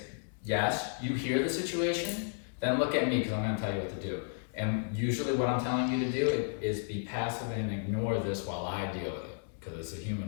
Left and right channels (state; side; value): silent; right; digital silence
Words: yes, you hear the situation, then look at me because I'm going to tell you what to do. And usually what I'm telling you to do is be passive and ignore this while I deal with it, because it's a